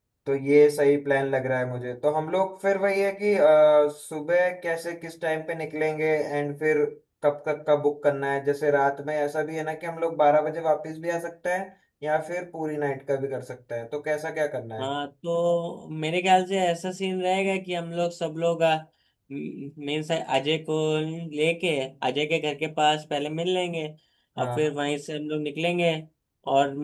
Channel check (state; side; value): identical; both; correlation 1.00